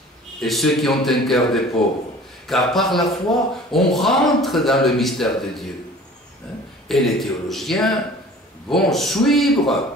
et ceux qui ont un cœur de pauvres. Car par la foi, on rentre dans le mystère de Dieu. Et les théologiens vont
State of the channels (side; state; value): both; normal; correlation 0.46